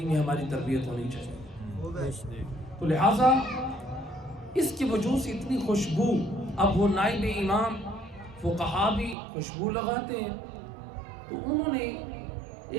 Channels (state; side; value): drops out; left; at 9.2 s